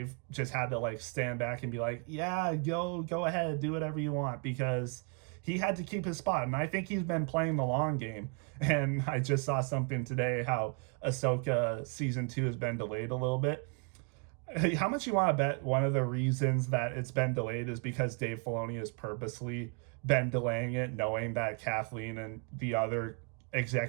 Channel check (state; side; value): quieter; left; 36.2 dB